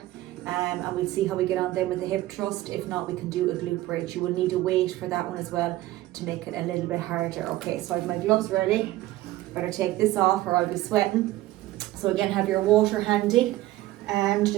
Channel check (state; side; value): quieter; left; 16.4 dB